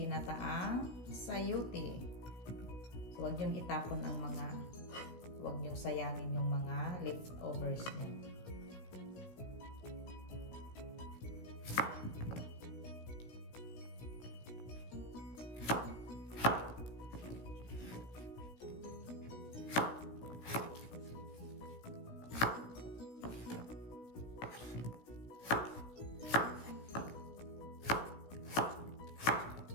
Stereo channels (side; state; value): right; late; 17 ms